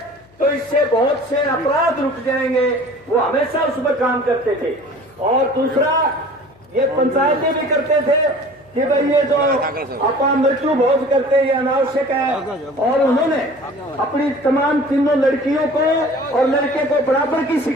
तो इससे बहुत से अपराध रुक जाएंगे। वो हमेशा उस पर काम करते थे। और दूसरा, ये पंचायतें भी करते थे कि भाई ये जो अपा मृत्यु भोज करते हैं ये अनावश्यक है। और उन्होंने अपनी तमाम तीनों लड़कियों को और लड़के को बराबर की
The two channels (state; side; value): noise; left; hum, 30 dB below the sound